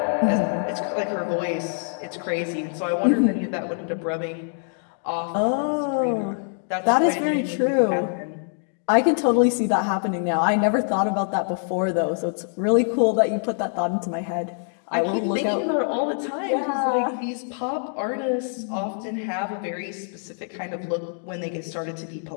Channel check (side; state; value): right; silent; 59 dB below the other